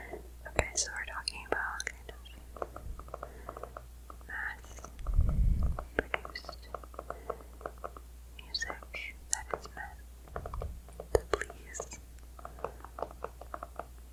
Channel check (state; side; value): identical; both; correlation 1.00